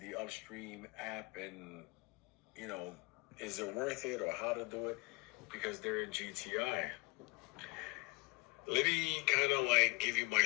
Upstream app, and, is it worth it, or how to do it, because they're in GTI. Let me kind of give you my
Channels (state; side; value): quieter; right; 25.9 dB